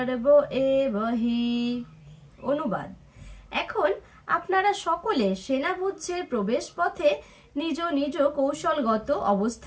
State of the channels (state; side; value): identical; both; correlation 1.00